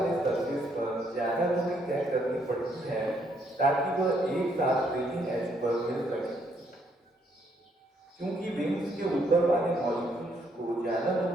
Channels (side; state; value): both; normal; correlation 0.71